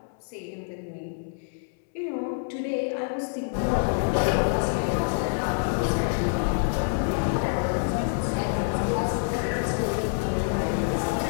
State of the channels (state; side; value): silent; right; 60 dB below the other